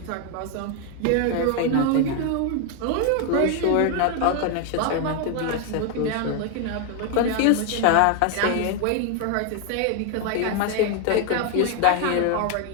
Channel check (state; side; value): different; both; correlation 0.01